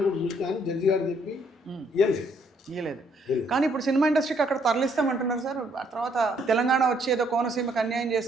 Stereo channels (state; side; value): normal; both; correlation 0.69